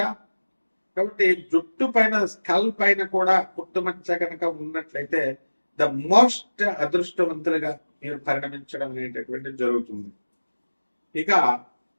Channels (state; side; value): inverted; both; correlation -1.00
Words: కాబట్టి జుట్టు పైన స్కల్ పైన కూడా పుట్టుమచ్చ కనుక ఉన్నట్లయితే ద మోస్ట్ అదృష్టవంతులుగా మీరు పరిణమించడం అనేటటువంటి జరుగుతుంది. ఇక